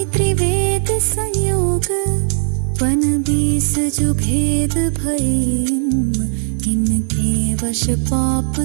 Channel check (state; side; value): silent; left; digital silence